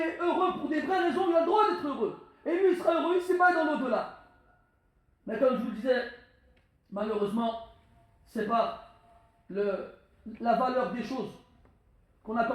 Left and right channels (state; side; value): identical; both; correlation 1.00